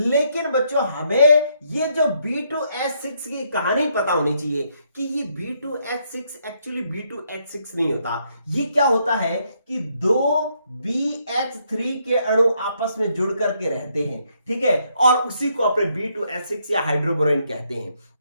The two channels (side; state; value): both; inverted; correlation -0.74